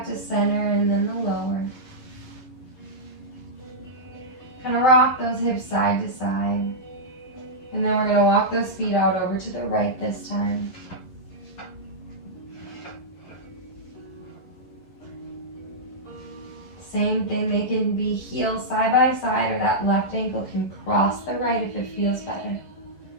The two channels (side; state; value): right; late; 11 ms